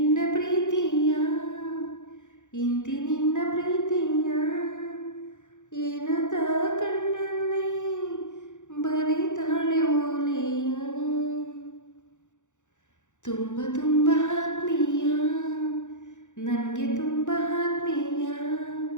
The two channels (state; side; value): late; right; 0.85 ms